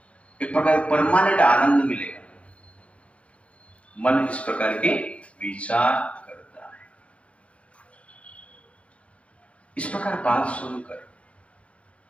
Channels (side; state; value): right; late; 0.062 ms